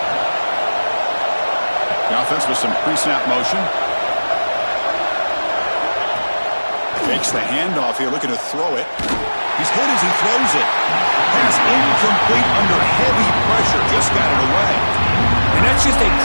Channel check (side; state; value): both; inverted; correlation -1.00